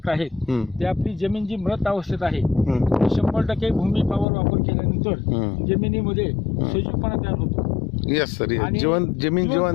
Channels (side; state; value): right; drops out; at 4.2 s